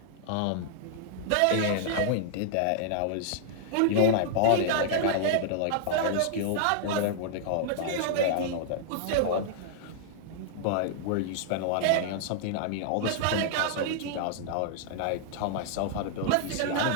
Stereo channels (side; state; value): both; different; correlation -0.01